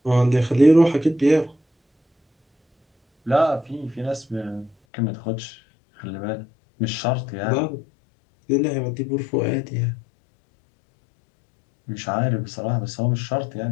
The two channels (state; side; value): drops out; right; at 4.8 s